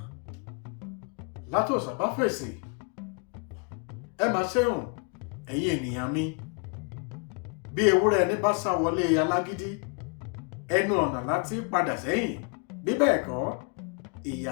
Látòsà bá fèsì, ẹ máa ṣeun ẹ̀yin ènìyàn mi. Bí ewúrẹ́ ẹni bá sá wọlé alágídí, ẹnu ọ̀nà láti padà sẹ́yìn. Bí bẹ́ẹ̀ kọ́, ìyà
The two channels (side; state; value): right; quieter; 35.6 dB